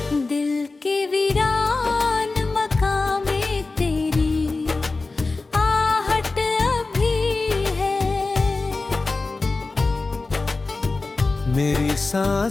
दिल के वीरान मकामे तेरी मेरी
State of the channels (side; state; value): right; quieter; 3.6 dB